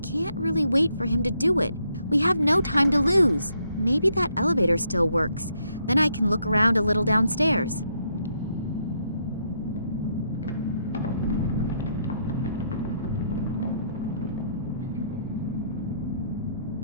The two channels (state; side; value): inverted; both; correlation -0.74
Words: really wait for him to do it. We have no time to lose. Maybe that elevator still works. Then I can look around a little downstairs.